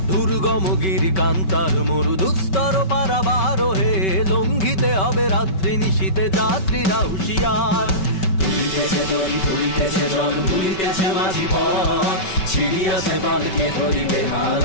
দুর্গমগিরি কান্তার মরু দুস্তর পারাবার হে, লঙ্ঘিতে হবে রাত্রি নিশীতে যাত্রীরা হুঁশিয়ার। ভুলিতেছে তরি ভুলিতেছে জল ভুলিতেছে মাঝি পথ, ছিড়িয়াছে বালকে ধরিবে হাল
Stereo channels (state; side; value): late; right; 5.3 ms